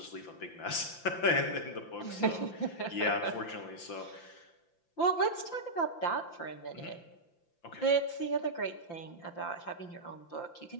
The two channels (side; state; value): right; late; 5.8 ms